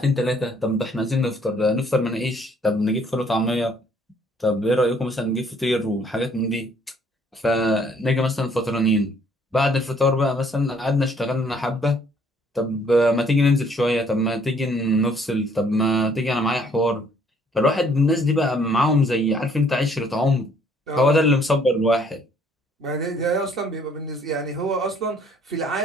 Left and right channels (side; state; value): both; normal; correlation 0.62